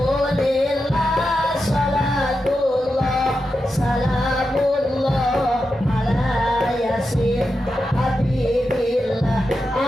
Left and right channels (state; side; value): normal; both; correlation 0.89